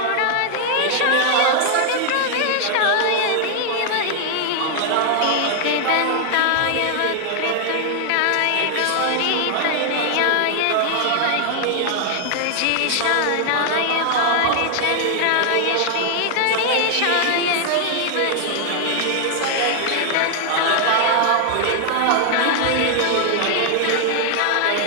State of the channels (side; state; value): both; different; correlation 0.00